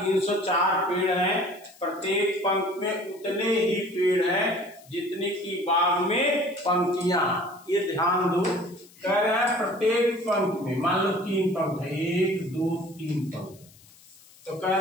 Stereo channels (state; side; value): noise; left; hiss, 25 dB below the sound